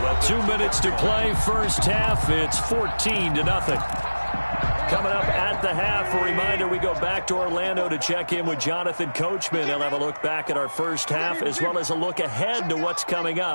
2 minutes to play, first half. It's 14-0. Coming up at the half, a reminder, we go back to Orlando to check in with Jonathan Coachman. He'll have a look back at our first half as well as a look ahead to what's coming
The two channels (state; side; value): inverted; both; correlation -1.00